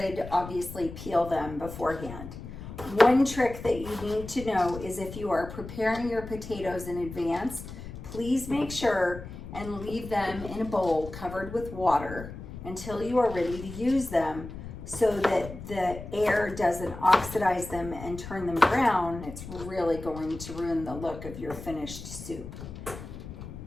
obviously peel them beforehand. One trick that you need to know is if you are preparing your potatoes in advance, please make sure and leave them in a bowl covered with water until you are ready to use them, so that the air doesn't oxidize them and turn them brown. It's really going to ruin the look of your finished soup.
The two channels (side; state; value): left; noise; rumble, 11 dB below the sound